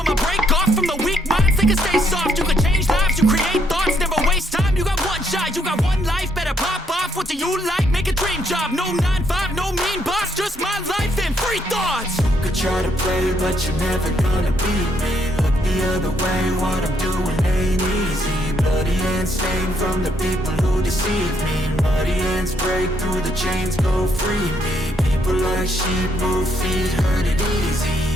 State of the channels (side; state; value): both; normal; correlation 0.73